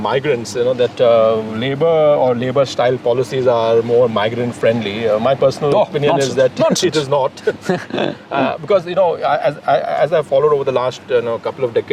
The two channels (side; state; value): both; identical; correlation 1.00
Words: migrants, that Labour or Labour-style policies are more migrant-friendly. My personal opinion is that it is not, because as I've followed over the last couple of